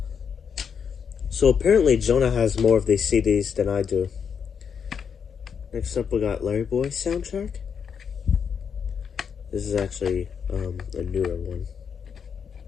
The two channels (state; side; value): quieter; right; 6.9 dB